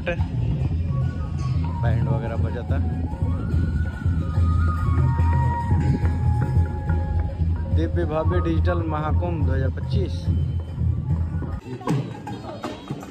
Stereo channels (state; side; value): identical; both; correlation 1.00